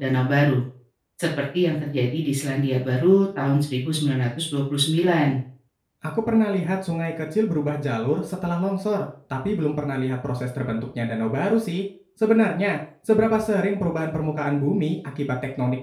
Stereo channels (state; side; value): identical; both; correlation 1.00